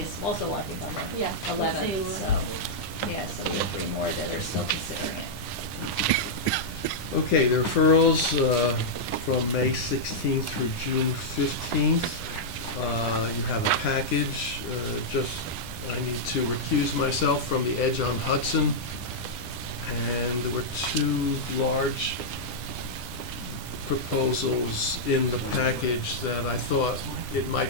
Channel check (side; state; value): right; late; 10 ms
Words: also, I think, on the Yeah, 11th, same. so, yeah, so we have 3 more that are still considering it. Okay, the referrals from May 16th through June 15th. You have a package. I need to recuse myself from the Edge on Hudson. And there were 2 large proposals in the package that I thought it